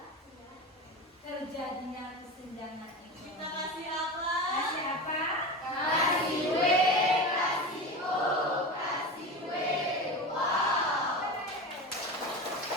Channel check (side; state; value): both; normal; correlation 0.26